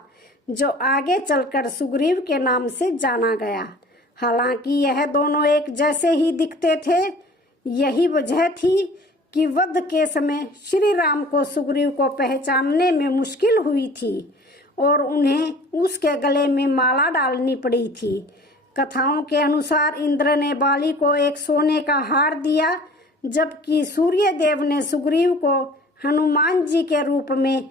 जो आगे चलकर सुग्रीव के नाम से जाना गया। हालांकि यह दोनों एक जैसे ही दिखते थे। यही वजह थी कि वध के समय श्री राम को सुग्रीव को पहचानने में मुश्किल हुई थी और उन्हें उसके गले में माला डालनी पड़ी थी। कथाओं के अनुसार इंद्र ने बाली को एक सोने का हार दिया, जबकि सूर्यदेव ने सुग्रीव को हनुमान जी के रूप में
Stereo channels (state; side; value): normal; both; correlation 0.47